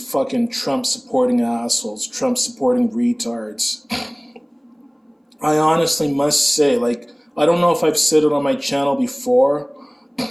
fucking Trump-supporting assholes, Trump-supporting retards. I honestly must say, I don't know if I've said it on my channel before,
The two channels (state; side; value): identical; both; correlation 1.00